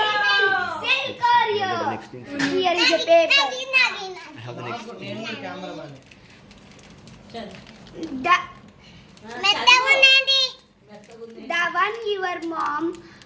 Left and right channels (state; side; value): identical; both; correlation 1.00